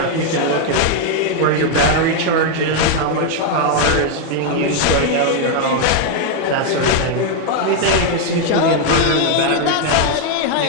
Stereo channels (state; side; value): different; both; correlation 0.01